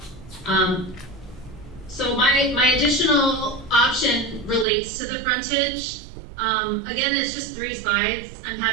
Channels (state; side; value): drops out; left; at 4.7 s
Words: So my additional option relates to the frontage. Again, it's just 3 slides. I'm